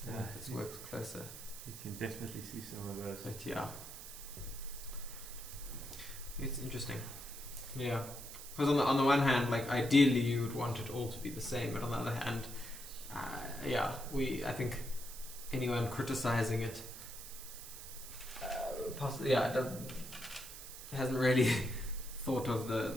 If it works closer. You can definitely see some of those. But yeah. It's interesting. Yeah. Because on the one hand, like ideally you would want it all to be the same, but on the other hand, I think anyone criticizing it, hasn't really thought of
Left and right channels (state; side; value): noise; right; hiss, 12 dB below the sound